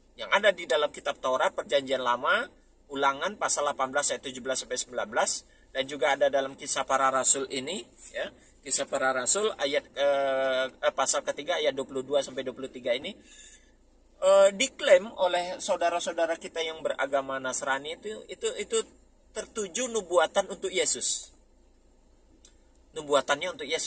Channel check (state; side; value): identical; both; correlation 1.00